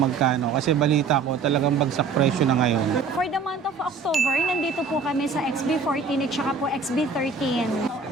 Kasi balita ko, talagang bagsak presyo na ngayon. For the month of October, nandito po kami sa XB14 at saka po XB13.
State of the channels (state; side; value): quieter; left; 4.8 dB